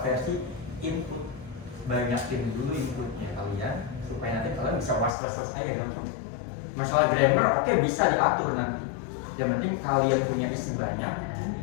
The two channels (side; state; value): right; drops out; at 5.1 s